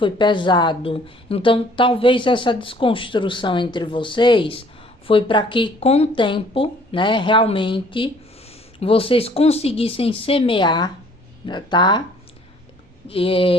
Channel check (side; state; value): both; normal; correlation 0.58